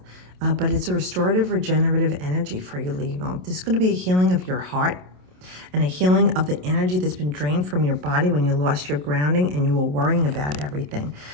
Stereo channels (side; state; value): left; late; 27 ms